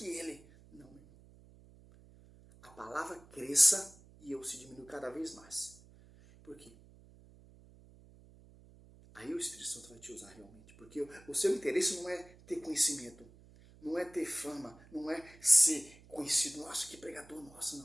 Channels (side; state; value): right; noise; hum, 24 dB below the sound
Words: ele. Não, meu irmão. A palavra cresça e eu se diminua cada vez mais. Por quê? Aí o Espírito Santo vai te usar realmente. Porque o seu interesse não é ter conhecimento. Não é ter fama. Não é ser conhecido. Nossa, que pregador, nossa,